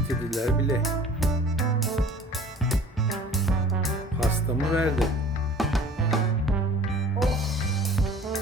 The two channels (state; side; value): normal; both; correlation 0.47